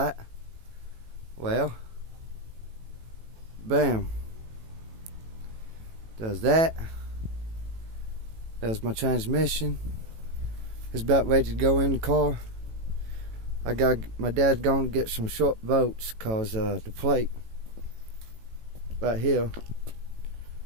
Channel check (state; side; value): late; left; 18 ms